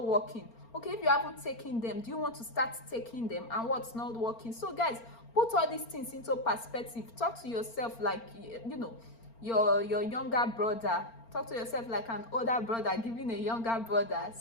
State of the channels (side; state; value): right; late; 4.4 ms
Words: working? Okay, if you haven't taken them, do you want to start taking them? And what's not working? So guys, put all these things into perspective. Talk to yourself like, your younger brother. Talk to yourself like an older brother giving a younger brother